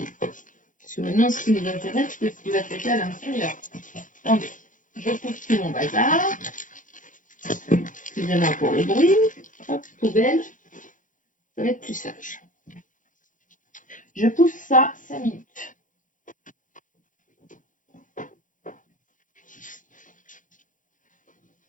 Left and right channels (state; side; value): late; right; 0.38 ms